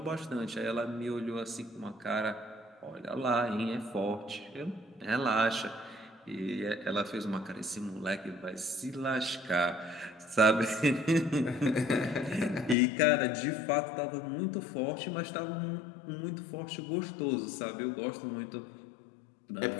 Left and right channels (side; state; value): right; drops out; at 12.8 s